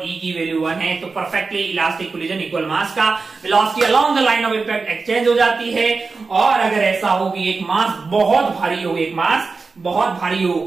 E की वैल्यू 1 है तो perfectly elastic collision equal mass का velocity along the line of impact exchange हो जाती है। और अगर ऐसा हो कि एक मास बहुत भारी हो, एक मास बहुत भारी हो,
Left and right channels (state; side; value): quieter; left; 4.3 dB